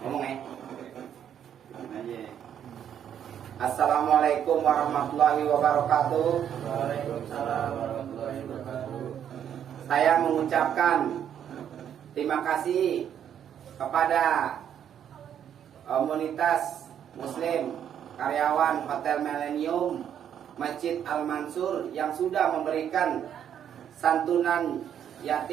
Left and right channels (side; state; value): left; quieter; 9.3 dB